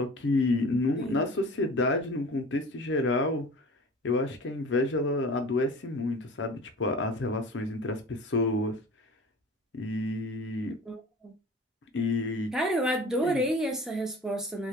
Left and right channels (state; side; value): normal; both; correlation 0.41